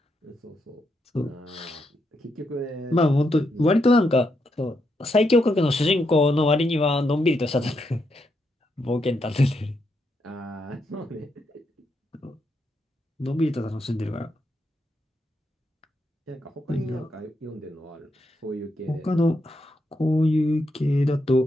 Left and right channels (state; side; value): normal; both; correlation 0.81